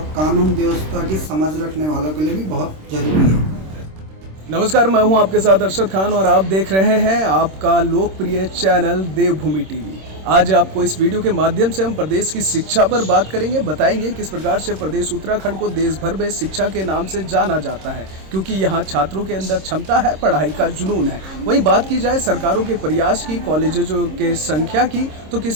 कानून व्यवस्था की समझ रखने वालों के लिए भी बहुत जरूरी है। नमस्कार, मैं हूं आपके साथ अरशद खान और आप देख रहे हैं आपका लोकप्रिय चैनल देवभूमि टीवी। आज आपको इस वीडियो के माध्यम से हम प्रदेश की शिक्षा पर बात करेंगे, बताएंगे किस प्रकार से प्रदेश उत्तराखंड को देश भर में शिक्षा के नाम से जाना जाता है, क्योंकि यहाँ छात्रों के अंदर क्षमता है, पढ़ाई का जुनून है। वहीं बात की जाए सरकारों के प्रयास की, कॉलेजों के संख्या की, तो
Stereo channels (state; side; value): late; left; 26 ms